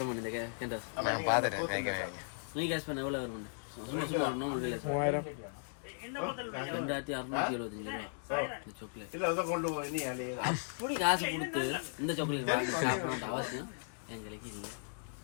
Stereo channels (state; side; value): silent; right; digital silence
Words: இந்த கேண்டோஸ்? நான் பார்த்துட்டேன். நீ கெஸ் பண்ண எவ்வளோ வருமானு? சும்மா சும்மா ஒன்றும் முடியாது. 2675 ரூபா இந்த சாக்லேட். இல்லை அதை கொண்டு போய் நீ அப்படி காசு கொடுத்து இந்த சாக்லேட் வாங்கி சாப்பிடணும் அவசியம் எங்களுக்கு இல்லை.